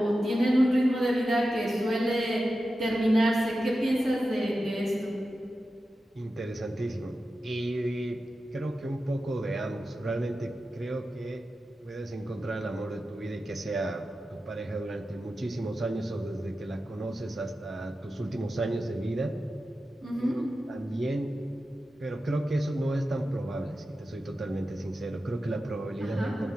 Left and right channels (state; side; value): normal; both; correlation 0.92